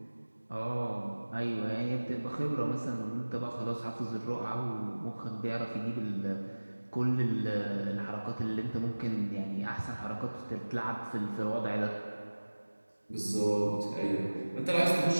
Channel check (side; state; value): both; inverted; correlation -1.00